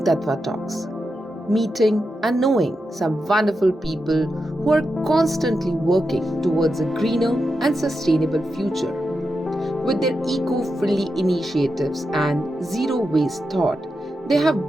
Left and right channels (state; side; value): normal; both; correlation 0.88